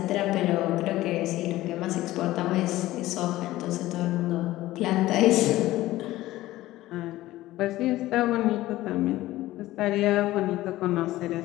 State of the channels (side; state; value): right; quieter; 16.4 dB